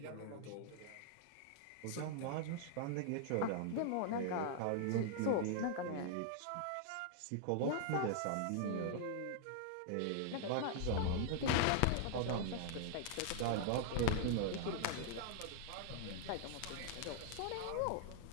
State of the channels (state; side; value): different; both; correlation -0.01